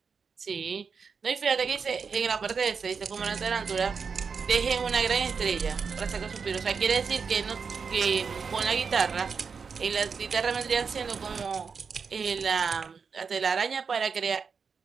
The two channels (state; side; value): quieter; left; 5.7 dB